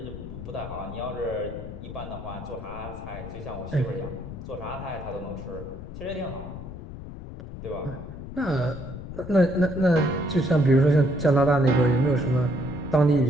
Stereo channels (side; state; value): left; noise; rumble, 11 dB below the sound